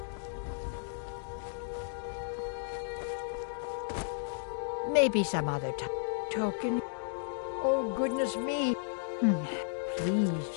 Maybe some other token. Oh, goodness me.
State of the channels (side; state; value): right; silent; digital silence